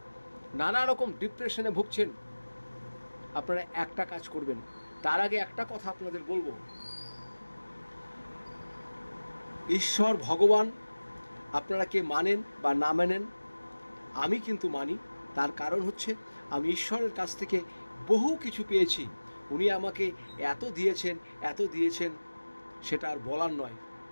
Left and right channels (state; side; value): inverted; both; correlation -1.00